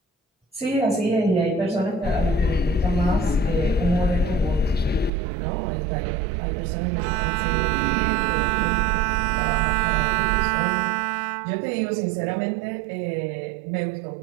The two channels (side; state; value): left; drops out; at 5.1 s